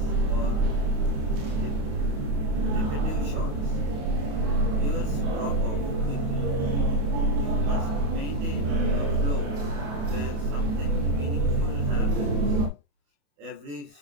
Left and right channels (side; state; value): left; late; 28 ms